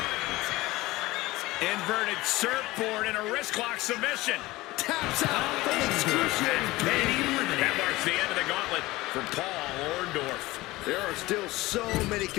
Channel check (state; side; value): quieter; right; 19.3 dB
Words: Inverted surfboard and a wrist lock submission. Taps out from excruciating pain. That marks the end of the gauntlet for Paul Orndorff. There are still so many